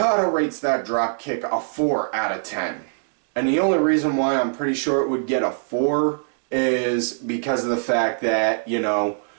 rates that drop kick a 4 out of 10. And the only reason why I'm pretty sure it would get a 4 is because of the fact that, you know,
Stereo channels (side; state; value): left; silent; digital silence